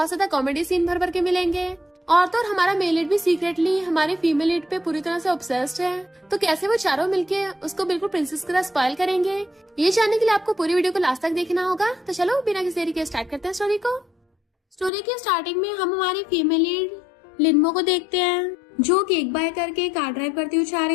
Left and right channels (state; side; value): drops out; right; at 14.9 s